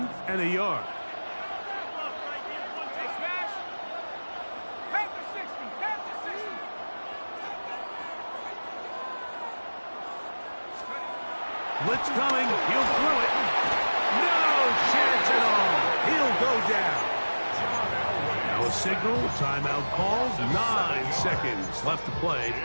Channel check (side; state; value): both; inverted; correlation -1.00